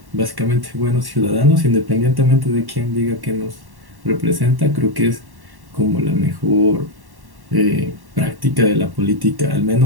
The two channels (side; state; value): left; late; 1.1 ms